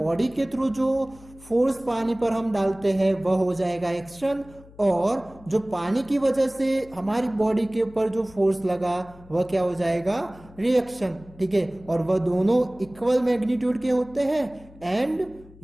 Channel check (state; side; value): noise; left; hum, 22 dB below the sound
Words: के थ्रू जो फोर्स पानी पर हम डालते हैं वह हो जाएगा एक्शन, और जो पानी की वजह से हमारी बॉडी के ऊपर जो फोर्स लगा वह क्या हो जाएगा, रिएक्शन, ठीक है। और वह दोनों इक्वल मैग्नीट्यूड के होते हैं, एंड